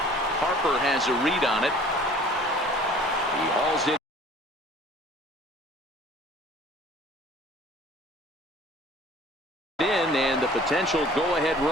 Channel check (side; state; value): both; normal; correlation 0.50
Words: Harper has a read on it. He hauls it in, and the potential go-ahead